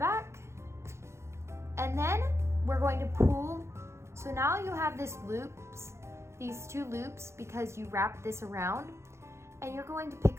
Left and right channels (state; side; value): late; left; 0.13 ms